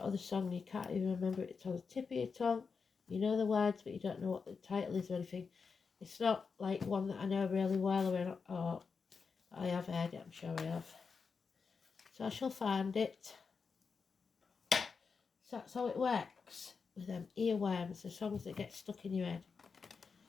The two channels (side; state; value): right; quieter; 5.3 dB